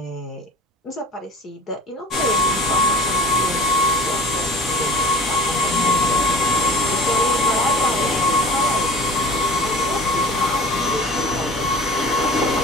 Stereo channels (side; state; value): both; normal; correlation 0.41